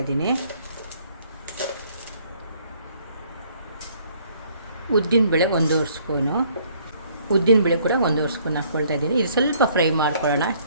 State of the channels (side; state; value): both; inverted; correlation -0.63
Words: ಇದ್ದೀನಿ. ಉದ್ದಿನಬೇಳೆ 1 ಸ್ಪೂನು. ಉದ್ದಿನಬೇಳೆ ಕೂಡ 1 ಸ್ಪೂನ್ ಹಾಕ್ಕೊಳ್ತಾ ಇದ್ದೀನಿ. ಇದು ಸ್ವಲ್ಪ ಫ್ರೈ ಮಾಡ್ಕೊಳ್ಳೋಣ.